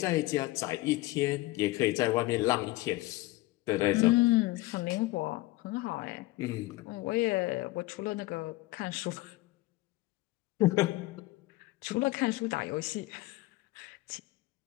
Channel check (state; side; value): quieter; right; 19.8 dB